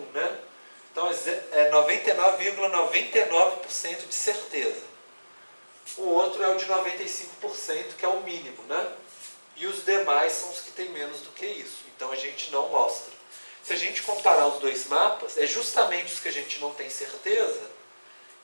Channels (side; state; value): both; inverted; correlation -1.00